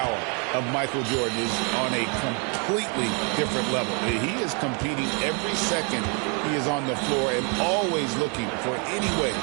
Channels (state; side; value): quieter; left; 36.2 dB